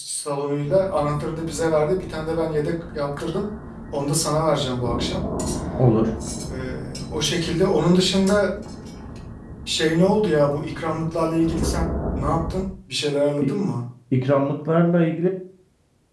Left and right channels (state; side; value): identical; both; correlation 1.00